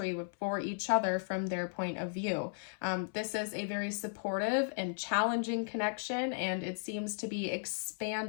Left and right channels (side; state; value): right; silent; 54 dB below the other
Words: for each other from their point of view. This is a very supportive and challenging connection, and it seems to be